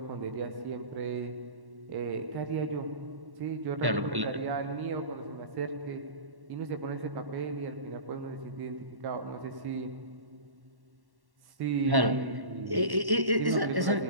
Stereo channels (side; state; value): left; late; 1.1 ms